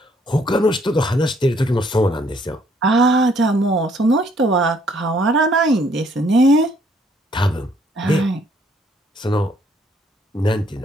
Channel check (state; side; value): normal; both; correlation 0.66